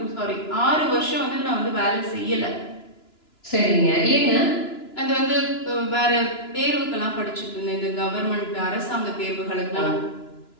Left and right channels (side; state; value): right; late; 2.9 ms